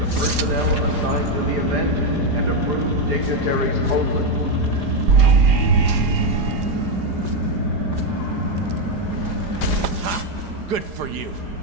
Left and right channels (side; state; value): left; late; 4.9 ms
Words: personnel assigned to the event and approved dignitaries only. Ha! Good for you.